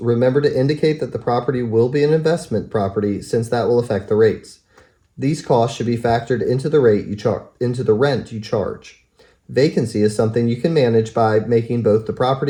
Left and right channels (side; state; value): both; identical; correlation 1.00